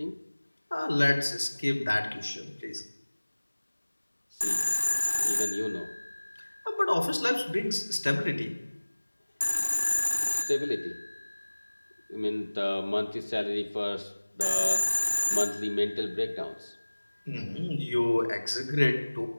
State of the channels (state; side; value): inverted; both; correlation -1.00